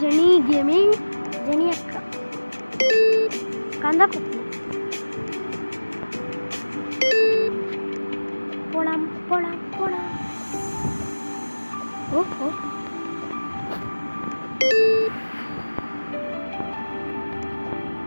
Jeni gaming, Jeni அக்கா, கந்தா குக்கு. போலாம் போலாம் போலாம். ஓஹோ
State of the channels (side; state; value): both; inverted; correlation -1.00